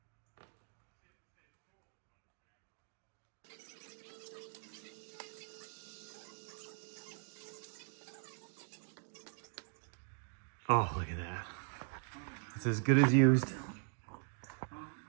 Oh, look at that. It's as good as used.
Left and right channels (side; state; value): left; silent; 51 dB below the other